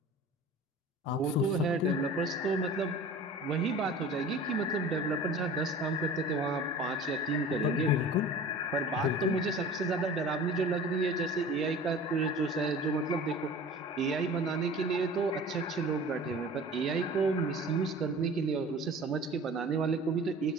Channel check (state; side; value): normal; both; correlation 0.41